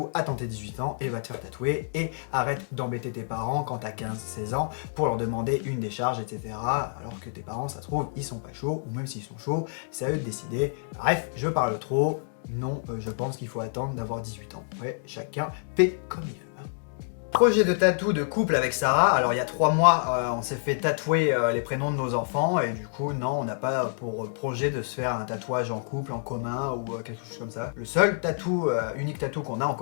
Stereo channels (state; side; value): silent; right; digital silence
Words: attends tes 18 ans et va te faire tatouer et arrête d'embêter tes parents quand t'as 15-16 ans pour leur demander une décharge, etc. Alors que tes parents, ça se trouve, ils sont pas chauds, ou même s'ils sont chauds, c'est à eux de décider. Bref, je parle trop. Non, je pense qu'il faut attendre d'avoir 18 ans. Ouais, chacun fait comme il veut. Projet de tatou de couple avec Sarah. Alors il y a 3 mois, on s'est fait tatouer les prénoms de nos enfants et du coup non, on n'a pas pour projet de se faire un tatouage en couple, en commun ou quelque chose comme ça. Le seul tatou, unique tatou qu'on a en